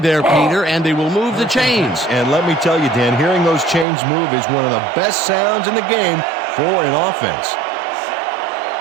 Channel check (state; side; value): drops out; left; at 3.9 s